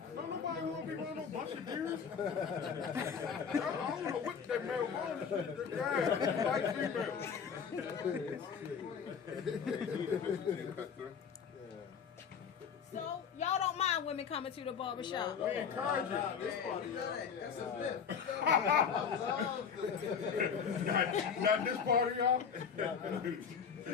Don't nobody want to be running no bunch of deers. I don't know what that male wants. Yeah, like female. So y'all don't mind women coming to the barbershop? We encourage it. That's a myth. Not this part of y'all.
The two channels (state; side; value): quieter; right; 6.7 dB